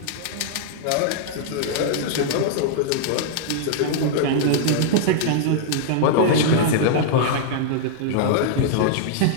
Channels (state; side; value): different; both; correlation -0.01